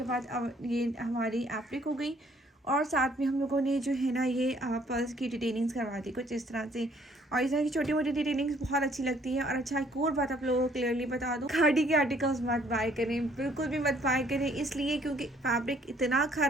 बाद अब ये हमारी एप्लिक हो गई। और साथ में हम लोगों ने जो है ना ये पर्स की डिटेलिंग्स करवा दी कुछ इस तरह से। और इस तरह की छोटी मोटी डिटेलिंग्स बहुत अच्छी लगती है। और अच्छा एक और बात आप लोगों को क्लियरली बता दूँ, खाड़ी के आर्टिकल्स मत बाय करें, बिल्कुल भी मत बाय करें, इसलिए क्योंकि फैब्रिक इतना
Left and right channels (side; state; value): both; normal; correlation 0.62